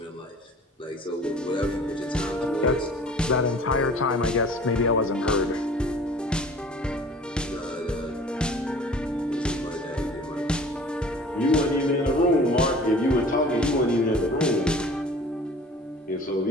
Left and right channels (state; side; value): normal; both; correlation 0.46